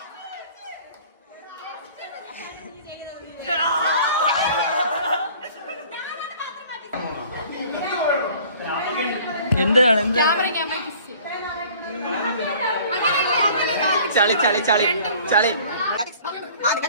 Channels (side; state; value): both; inverted; correlation -0.50